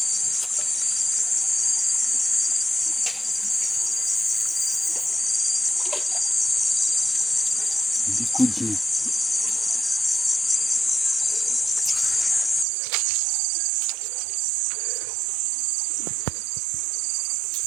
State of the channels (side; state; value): left; drops out; at 12.7 s